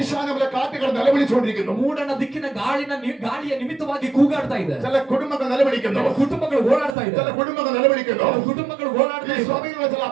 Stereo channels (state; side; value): drops out; left; at 7.0 s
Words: കാറ്റുകൾ നിലവിളിച്ചുകൊണ്ടിരിക്കുന്നു. ಮೂಡನ ದಿಕ್ಕಿನ ಗಾಳಿಯ ನಿಮಿತ್ತವಾಗಿ ಕೂಗಾಡ್ತಾ ಇದೆ. ചില കുടുംബങ്ങൾ നിലവിളിക്കുന്നു. ಕೆಲವು ಕುಟುಂಬಗಳು ಓಡಾಡ್ತಾ ചില ಇದ್ದಾರೆ. കുടുംബങ്ങൾ നിലവിളിക്കുന്നു. ಕೆಲವು ಕುಟುಂಬಗಳು ಓಡಾಡ್ತಾ ഈ ಇದ್ದಾರೆ. സഭയിലുള്ള ചില